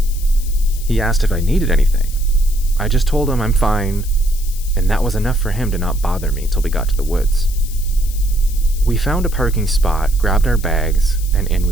He asked if I needed anything. I just told him I'm fine, and that was enough for him to not bother me till we got to the woods. We found a parking spot, grabbed our bags, and in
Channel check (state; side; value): noise; left; hiss, 15 dB below the sound